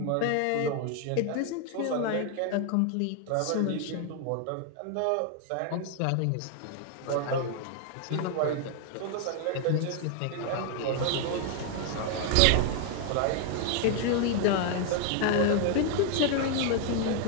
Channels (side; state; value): both; different; correlation 0.00